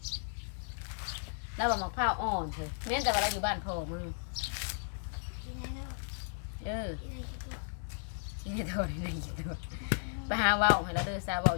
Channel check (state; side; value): silent; right; digital silence